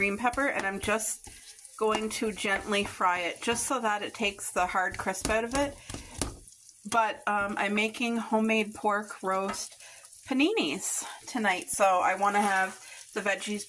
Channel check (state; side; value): identical; both; correlation 1.00